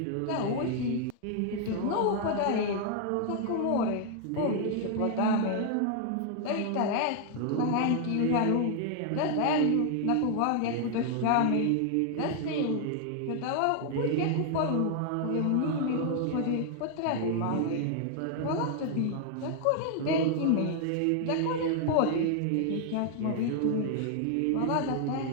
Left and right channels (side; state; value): both; different; correlation 0.00